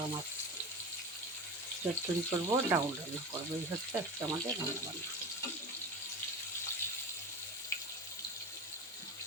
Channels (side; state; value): both; normal; correlation 0.28